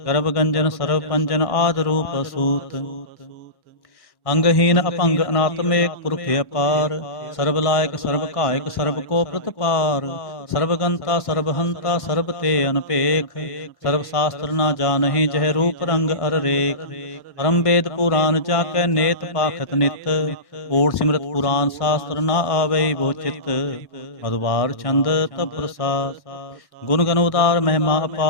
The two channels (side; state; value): right; late; 1.1 ms